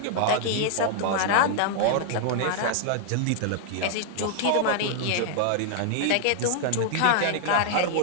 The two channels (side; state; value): both; different; correlation -0.01